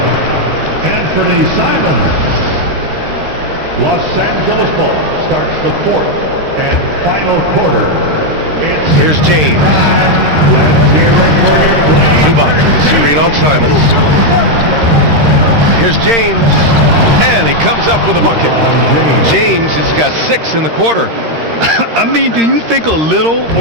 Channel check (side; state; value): left; late; 13 ms